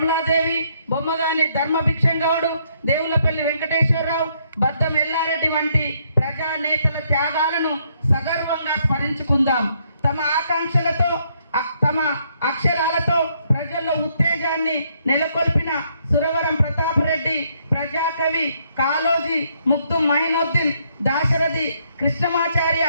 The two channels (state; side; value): inverted; both; correlation -0.71